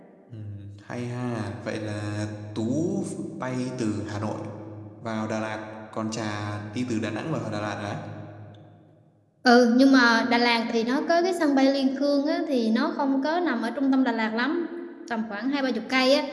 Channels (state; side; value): identical; both; correlation 1.00